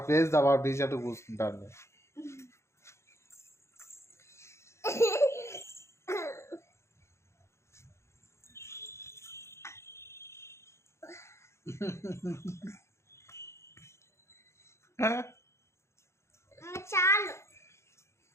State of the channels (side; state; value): right; late; 0.13 ms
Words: ఫేస్ ఆ బాబు టీ షర్ట్ పూసుకుంటాను. చాలు